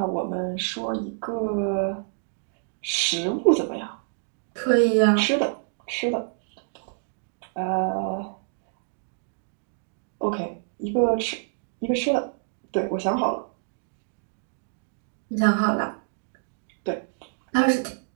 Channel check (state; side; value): silent; left; digital silence